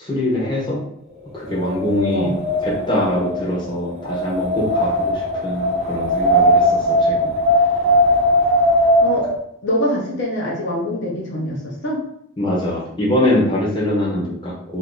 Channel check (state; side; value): normal; both; correlation 0.04